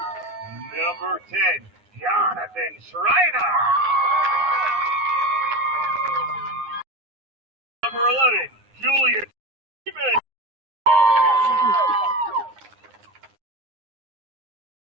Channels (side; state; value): left; late; 9.7 ms